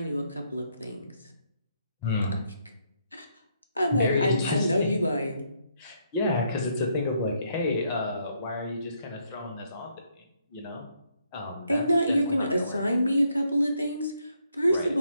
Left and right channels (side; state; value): both; inverted; correlation -0.73